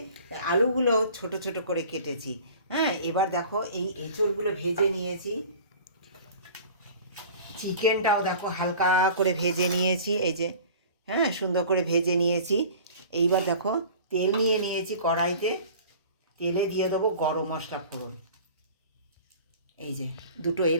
আলুগুলো ছোট ছোট করে কেটেছি। হ্যাঁ, এবার দেখো এই এঁচড়গুলো ভেজে নিয়েছি। চিকেনটাও দেখো হালকা করে ভেজে নিয়েছি, এই যে, হ্যাঁ, সুন্দর করে ভেজে নিয়েছি। এইবার দেখো তেল নিয়ে নিয়েছি কড়াইতে, তেলে দিয়ে দেবো গরম মশলা ফোড়ন। এই যে 2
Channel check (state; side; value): inverted; both; correlation -0.43